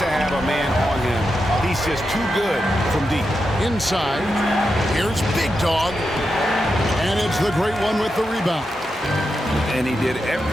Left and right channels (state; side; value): normal; both; correlation 0.87